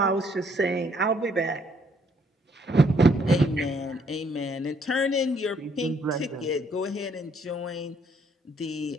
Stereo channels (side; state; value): both; normal; correlation 0.67